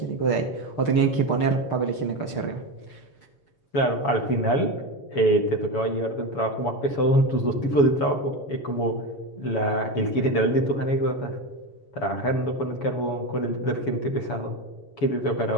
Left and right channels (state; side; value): late; right; 6.6 ms